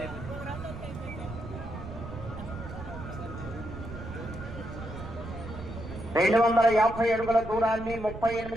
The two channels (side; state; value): right; noise; rumble, 10 dB below the sound